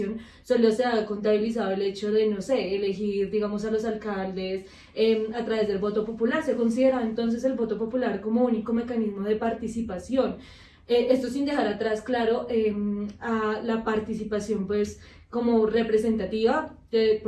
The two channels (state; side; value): identical; both; correlation 1.00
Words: solo se ha contabilizado el hecho de, no sé, elegir, digamos, a los alcaldes a través del voto popular. Se considera entonces el voto popular como único mecanismo de participación. Esto sin dejar atrás, claro, a la participación pues como representativa,